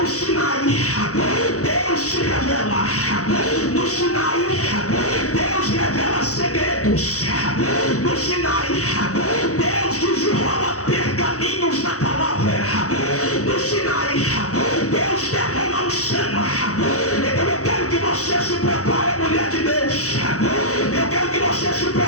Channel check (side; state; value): right; late; 0.65 ms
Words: Sinai Deus se revela, no Sinai Deus revela segredos, no Sinai Deus desenrola pergaminhos na palavra, no Sinai Deus derrama unção. Então eu quero que você se prepare, mulher de Deus, eu quero que você se